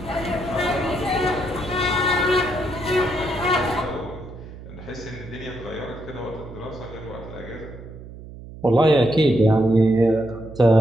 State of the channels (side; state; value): right; noise; hum, 15 dB below the sound